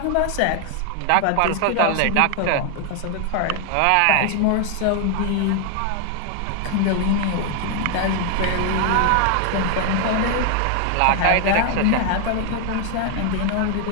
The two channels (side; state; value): both; different; correlation 0.00